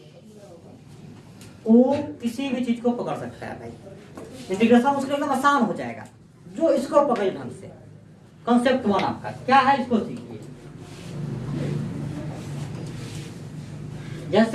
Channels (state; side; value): identical; both; correlation 1.00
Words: वो किसी भी चीज को पकड़ सकता है भाई। इंटीग्रेशन उसके एकदम आसान हो जाएगा जो इसको पकड़े ढंग से। कॉन्सेप्ट 1 आपका क्या है, इसको सीखिए।